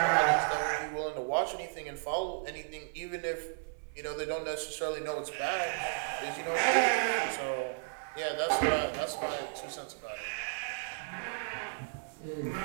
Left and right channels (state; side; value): silent; left; 55 dB below the other